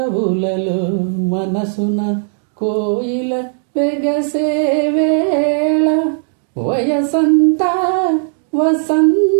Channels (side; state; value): left; silent; 69 dB below the other